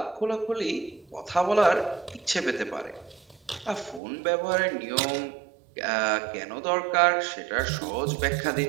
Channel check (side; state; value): left; drops out; at 4.0 s